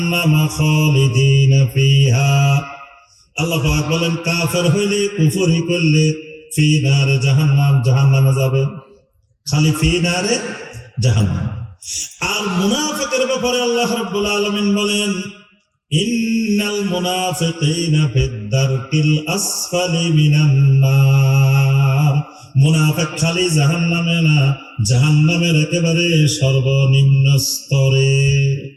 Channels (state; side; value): identical; both; correlation 1.00